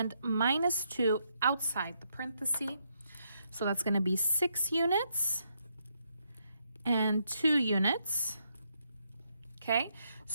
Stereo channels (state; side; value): inverted; both; correlation -0.77